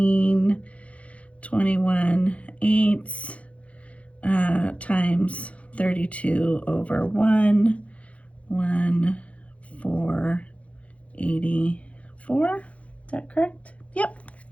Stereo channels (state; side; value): late; right; 0.064 ms